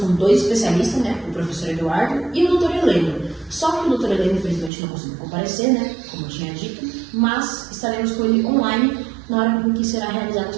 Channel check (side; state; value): left; drops out; at 4.7 s